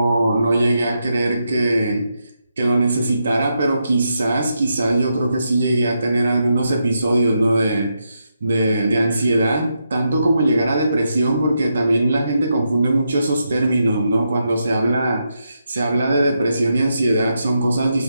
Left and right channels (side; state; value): both; inverted; correlation -0.83